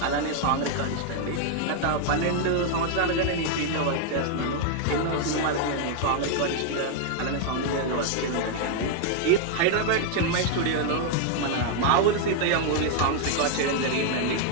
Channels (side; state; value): both; different; correlation 0.00